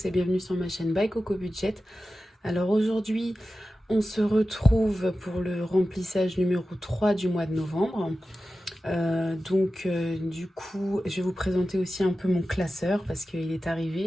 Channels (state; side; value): normal; both; correlation 0.94